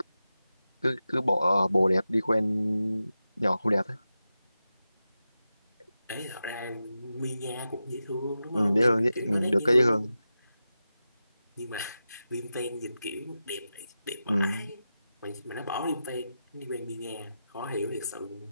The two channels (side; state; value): both; inverted; correlation -0.91